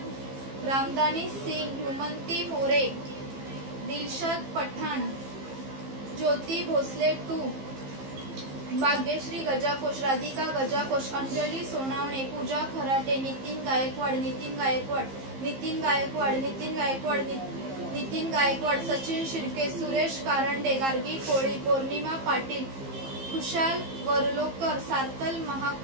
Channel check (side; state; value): left; late; 15 ms